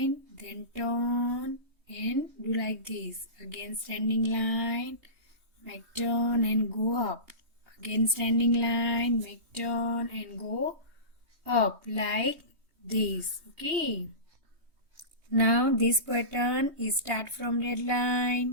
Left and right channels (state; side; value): late; left; 3.2 ms